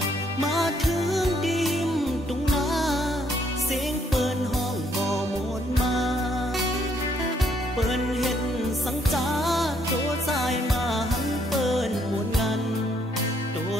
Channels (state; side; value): normal; both; correlation 0.70